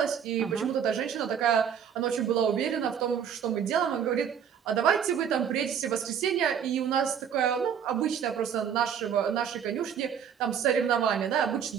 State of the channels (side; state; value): left; quieter; 8.1 dB